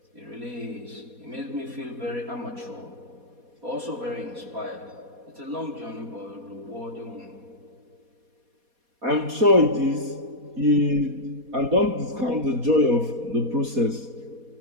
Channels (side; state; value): left; late; 4.2 ms